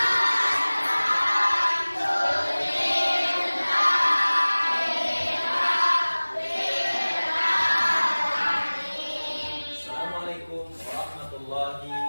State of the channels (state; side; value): inverted; both; correlation -1.00